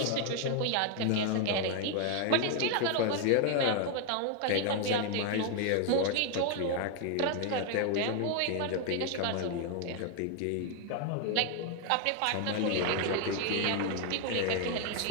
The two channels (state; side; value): different; both; correlation 0.00